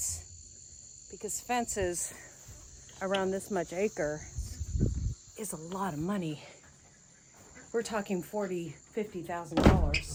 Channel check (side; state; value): both; identical; correlation 1.00